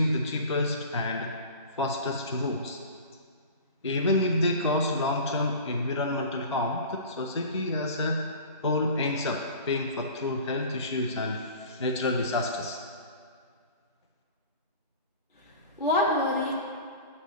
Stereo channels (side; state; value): both; inverted; correlation -0.38